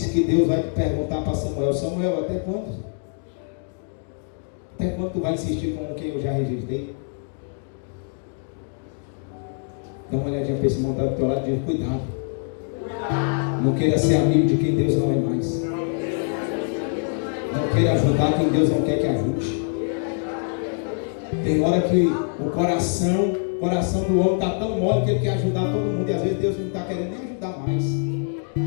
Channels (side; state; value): right; silent; 58 dB below the other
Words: que Deus vai perguntar para Samuel: Samuel, até quando? Até quando tu vai insistir com o que eu já rejeitei? Dá uma olhadinha para esse irmão do teu lado e diz: cuidado. Não queira ser amigo de quem Deus não é mais. Não queira ajudar quem Deus não quer que ajude. Tem hora que o coração do homem está tão mole que ele quer ajudar todo mundo, e às vezes Deus não está querendo nem ajudar mais.